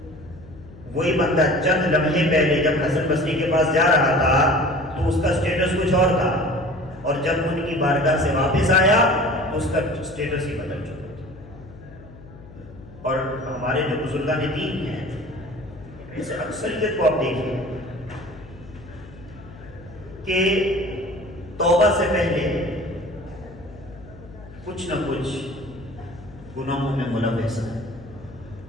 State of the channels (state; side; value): noise; left; hum, 19 dB below the sound